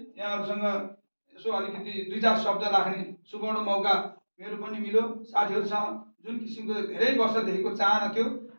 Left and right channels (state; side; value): inverted; both; correlation -1.00